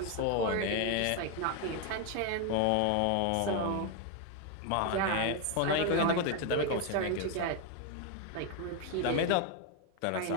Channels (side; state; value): both; different; correlation 0.01